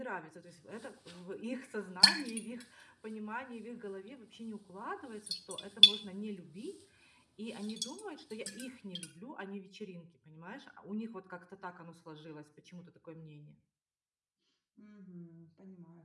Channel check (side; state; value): both; identical; correlation 1.00